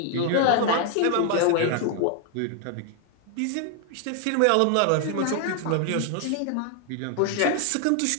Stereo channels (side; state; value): both; different; correlation 0.00